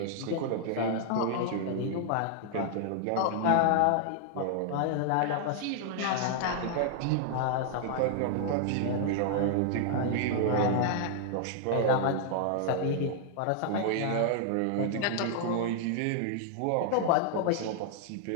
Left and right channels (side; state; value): both; different; correlation 0.00